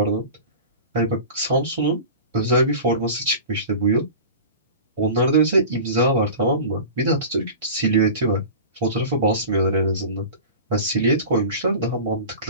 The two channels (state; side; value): inverted; both; correlation -0.34